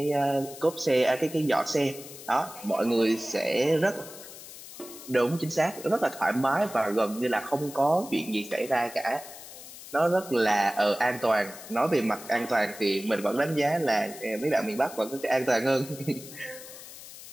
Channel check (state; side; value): noise; left; hiss, 15 dB below the sound